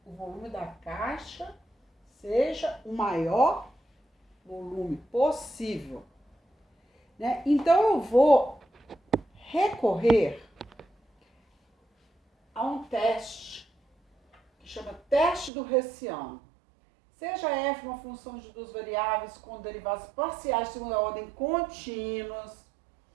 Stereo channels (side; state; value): left; drops out; at 15.5 s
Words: o volume da caixa seja o maior volume possível. Né? Então, eu vou recorrer a um teste que chama teste do Hessiano. Seja f uma função de duas variáveis com derivadas parciais de segunda ordem contínuas,